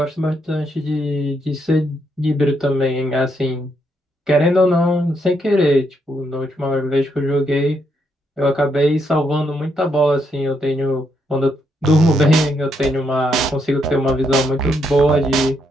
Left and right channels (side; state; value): both; normal; correlation 0.77